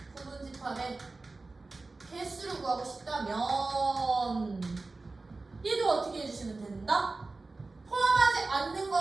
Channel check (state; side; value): quieter; left; 3.5 dB